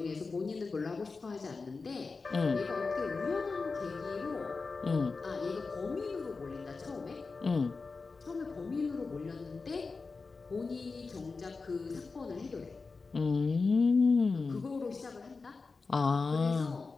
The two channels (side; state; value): right; quieter; 4.3 dB